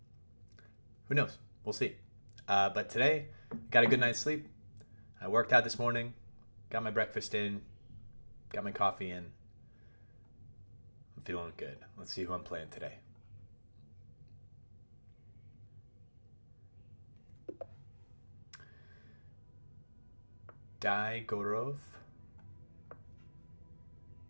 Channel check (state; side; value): inverted; both; correlation -1.00